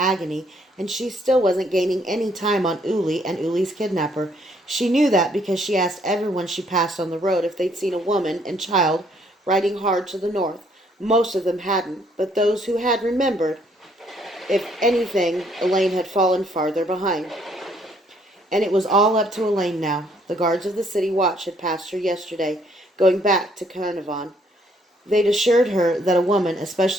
and she still wasn't gaining any time on Uli and Uli's kidnapper. She knew that because she asked everyone she passed on the road if they'd seen a woman and child riding hard to the north. Most of them hadn't, but those who had remembered. If anything, Elaine had fallen farther behind. And it was all up to Elaine now. The guards of the city watch had passed her yesterday, going back to Carnarvon. They'd assured her that a woman,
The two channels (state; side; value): normal; both; correlation 0.67